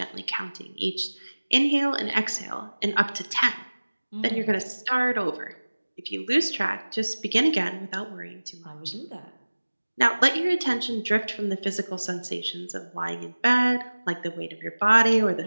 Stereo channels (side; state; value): both; inverted; correlation -1.00